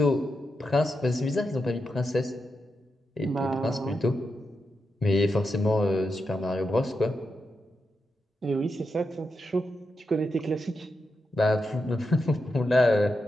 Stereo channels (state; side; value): normal; both; correlation 0.86